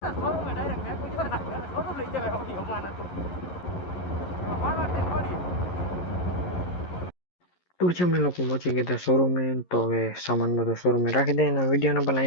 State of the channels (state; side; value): late; right; 11 ms